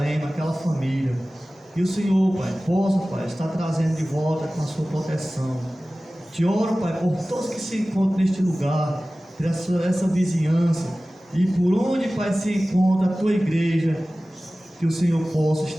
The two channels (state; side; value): normal; both; correlation 0.97